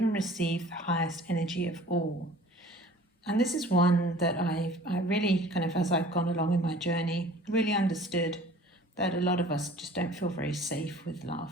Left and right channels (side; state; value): both; normal; correlation 0.47